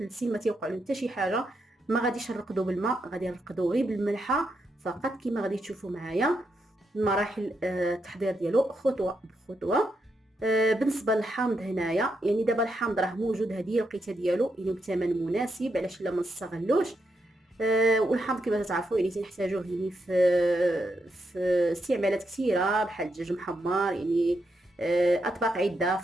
سنين ما تيوقع لهم حتى شي حاجه. ما غاديش نرقدوا بالماء، غادي نرقدوا غير بالملحه فقط كما غادي تشوفوا معايا مراحل التحضير ديالو خطوه بخطوه. بالنسبه للحامض هنايا، يعني دابا الحامض راه موجود، هذه الوقيته ديالو يعني بثمن مناسب، علاش لا ما نستغلوش. والحامض كما تعرفوا يعني تنحتاجوه يعني في استعمالات كثيره بحال الدجاج محمر، يعني اطباق عده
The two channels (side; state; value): both; normal; correlation 0.82